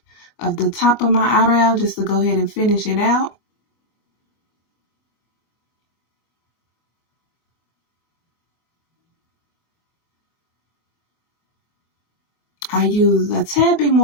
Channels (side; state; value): right; late; 24 ms